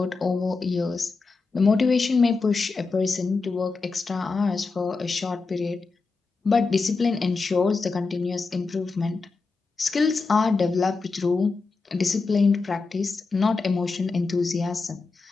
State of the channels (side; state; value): right; quieter; 4.1 dB